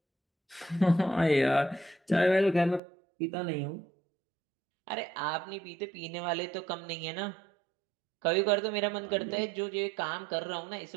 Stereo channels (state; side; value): drops out; left; at 2.8 s